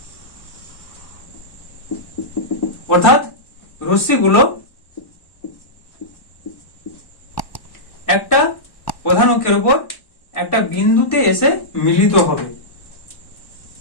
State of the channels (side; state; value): right; late; 1.1 ms